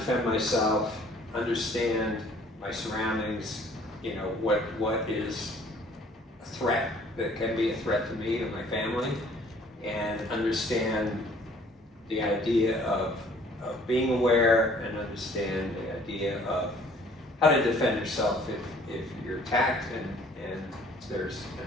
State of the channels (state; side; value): normal; both; correlation 0.56